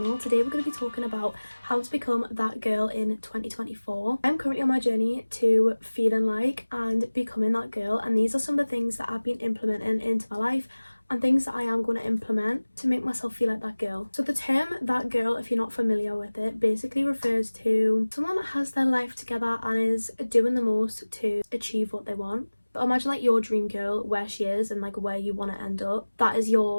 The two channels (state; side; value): inverted; both; correlation -1.00